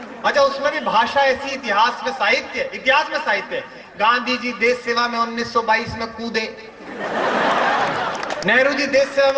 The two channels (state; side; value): identical; both; correlation 1.00